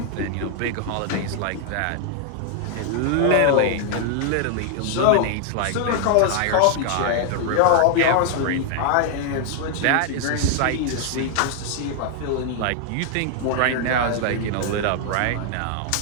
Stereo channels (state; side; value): different; both; correlation 0.00